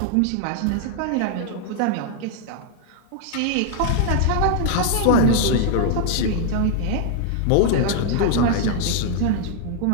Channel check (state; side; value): different; both; correlation -0.01